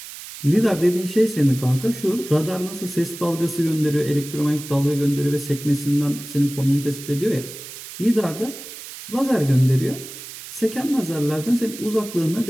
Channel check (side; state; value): right; noise; hiss, 13 dB below the sound